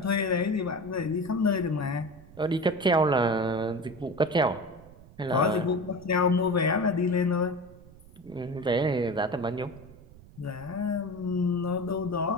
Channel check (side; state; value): right; noise; rumble, 21 dB below the sound